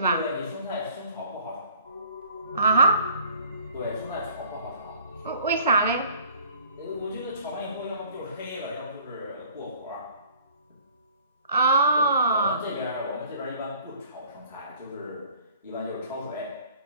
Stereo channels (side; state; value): both; inverted; correlation -0.53